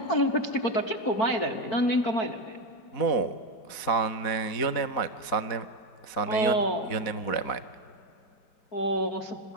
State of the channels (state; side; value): late; right; 4.1 ms